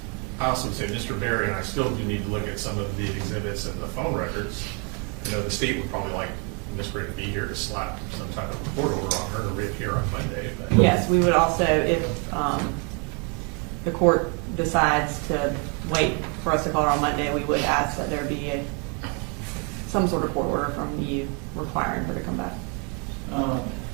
I also would say Mr. Berry and I still do need to look at some of the exhibits and the phone records. I know the state would probably like Ms. Gray to be here to slap some type of court order on her to reappear on Monday. But Yes, we would also, if the court decides to wait for us to call her on Monday, we would ask that there be some sort of court order from you requiring her to come back.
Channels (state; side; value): quieter; left; 35.1 dB